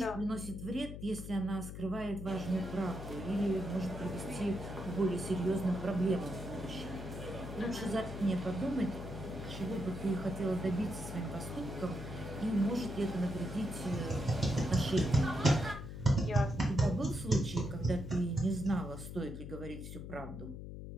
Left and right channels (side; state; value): left; noise; hum, 9 dB below the sound